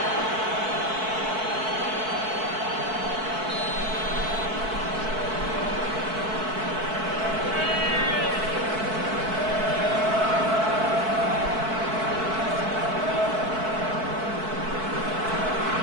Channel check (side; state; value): left; late; 4.6 ms